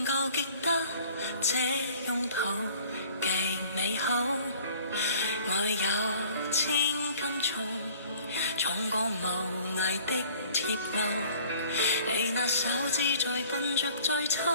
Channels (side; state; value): both; inverted; correlation -0.52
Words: 夠極得這擁抱極美好，愛有千斤重，重過無涯的鐵路。你那手指再笨拙再